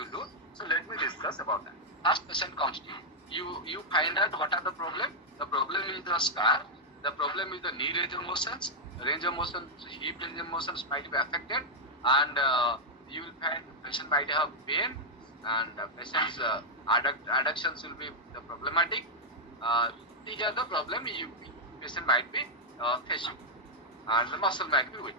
will do. So let me discuss about that. First patient comes to you. You find out what are the problem. The problem is the scar. The problem is the knee range of motions. Range of motion, hip range of motions might be affected, and you will find patient might have pain. and patient's adductions will be the problematic. These are the problem patient might be facing, and the muscle might be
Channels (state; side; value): normal; both; correlation -0.04